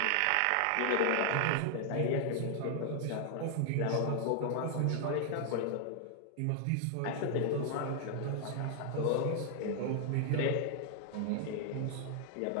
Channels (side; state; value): both; different; correlation 0.00